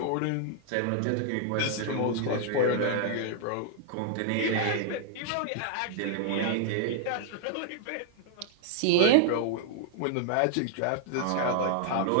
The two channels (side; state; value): both; different; correlation 0.00